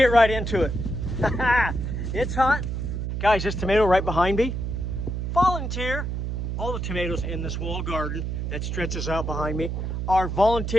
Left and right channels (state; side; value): noise; right; hum, 3 dB below the sound